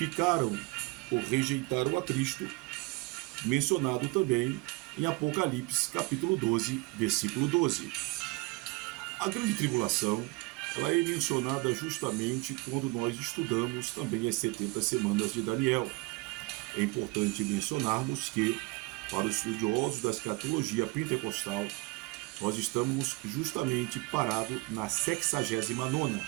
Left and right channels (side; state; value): left; quieter; 25.3 dB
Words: ou rejeitaram a Cristo, mencionado também em Apocalipse, capítulo 12, versículo 12. A grande tribulação, ela é mencionada justamente quando nós estudamos também as 70 semanas de Daniel. É importante mencionarmos que, para os estudiosos da escatologia pentecostal, nós estamos justamente parados na 69ª